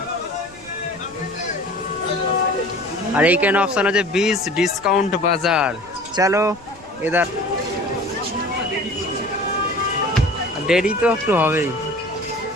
আর এইখানে অপশন আছে 20 ডিসকাউন্ট বাজার। চলো এদার, দেরি তো একটু হবেই।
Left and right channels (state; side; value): noise; left; rumble, 25 dB below the sound